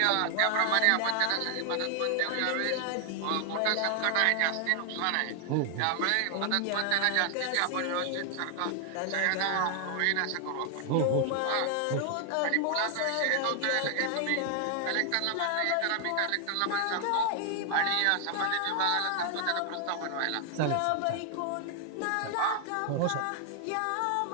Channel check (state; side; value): different; both; correlation 0.00